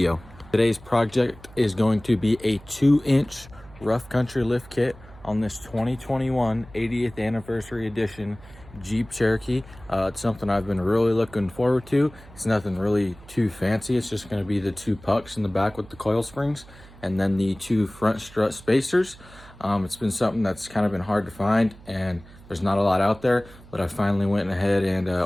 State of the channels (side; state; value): right; noise; hum, 21 dB below the sound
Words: Today's project is going to be a 2-inch rough country lift kit on this 2021 80th anniversary edition Jeep Cherokee. It's something I've been really looking forward to. It's nothing really too fancy. It's just going to be the 2 pucks in the back with the coil springs and then the 2 front strut spacers. It's been something that's kind of been hard to find, and there's not a lot out there, but I finally went ahead and